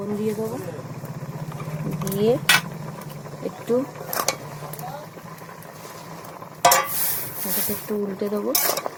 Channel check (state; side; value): identical; both; correlation 1.00